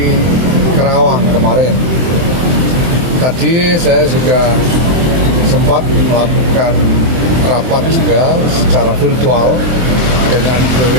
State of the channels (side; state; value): left; late; 23 ms